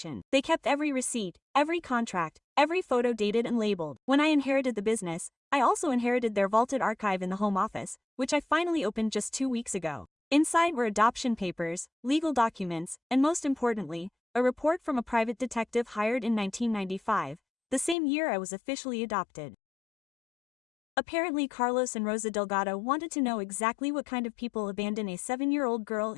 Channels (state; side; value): drops out; right; at 17.9 s